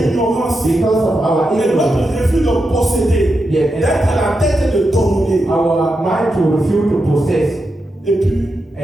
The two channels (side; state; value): both; normal; correlation 0.87